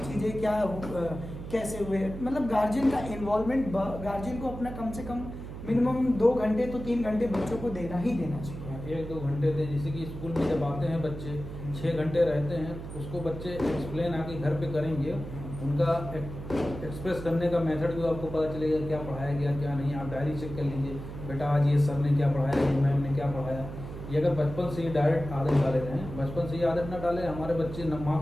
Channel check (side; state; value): right; noise; hum, 10 dB below the sound